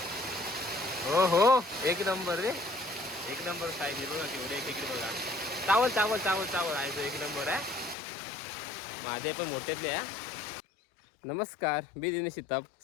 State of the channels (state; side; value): drops out; right; at 8.0 s